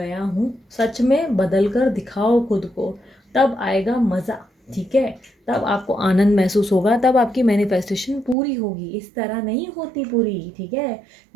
हूँ, सच में बदल कर दिखाओ खुद को, तब आएगा मज़ा, ठीक है। तब आपको आनंद महसूस होगा, तब आपकी मैनिफेस्टेशन पूरी होगी। इस तरह नहीं होती पूरी, ठीक है।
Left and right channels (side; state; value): left; drops out; at 8.3 s